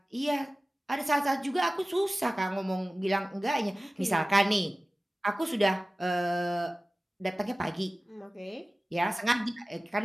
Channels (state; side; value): normal; both; correlation 0.97